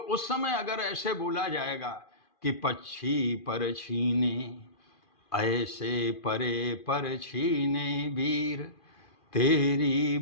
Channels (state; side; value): late; right; 2.4 ms